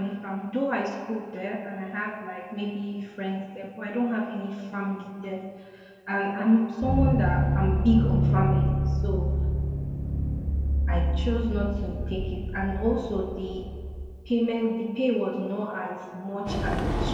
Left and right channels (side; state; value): both; identical; correlation 1.00